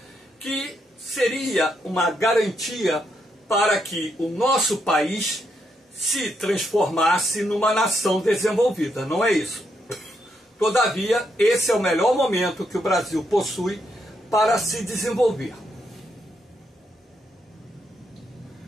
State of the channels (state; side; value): normal; both; correlation 0.79